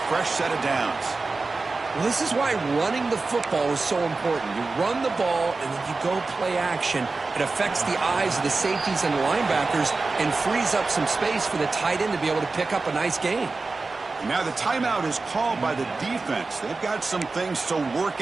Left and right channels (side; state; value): left; quieter; 3.8 dB